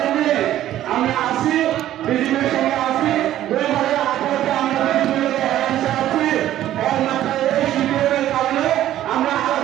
আমরা আসি, বিজেপির সঙ্গে আসি, 2018-তে আমরা বিজেপির অ্যালায়েন্সে আছি। একমাত্র এই সিপিএমের কারণে আমরা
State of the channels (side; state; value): left; quieter; 12.9 dB